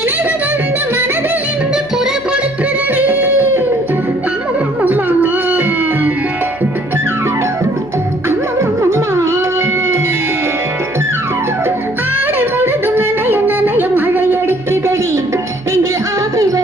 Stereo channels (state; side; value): noise; right; hum, 21 dB below the sound